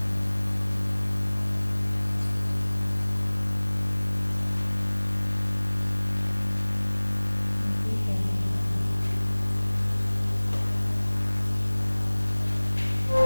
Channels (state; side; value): inverted; both; correlation -1.00